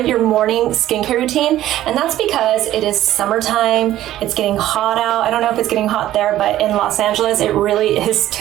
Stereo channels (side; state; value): left; quieter; 13.6 dB